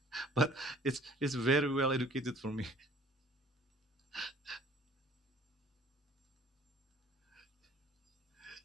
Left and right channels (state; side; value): normal; both; correlation 0.53